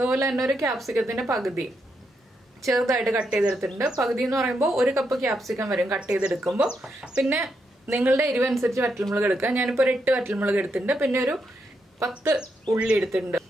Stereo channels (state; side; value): normal; both; correlation 0.81